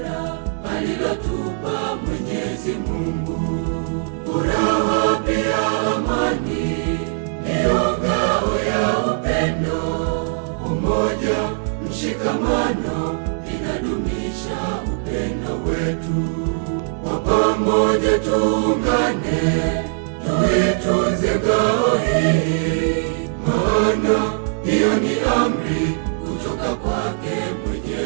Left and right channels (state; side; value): silent; left; 57 dB below the other